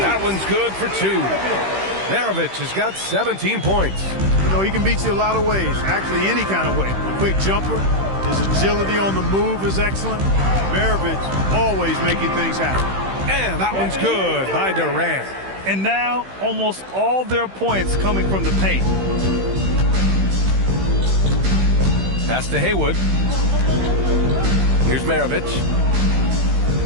one's good for 2. Maravich has got 17 points. You know, he can beat you a lot of ways, actually any kind of way. A quick jumper, his agility on the move is excellent. Maravich always making things happen. And that one's good by Durant. And now almost all their points coming from the paint. Pass to Haywood. Here's Maravich.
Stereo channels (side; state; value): left; late; 15 ms